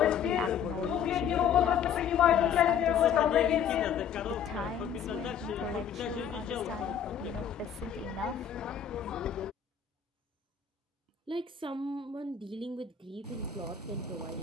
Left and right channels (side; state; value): right; quieter; 8.1 dB